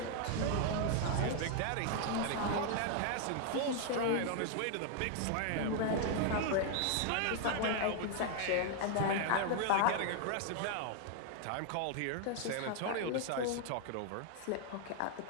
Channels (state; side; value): different; both; correlation 0.00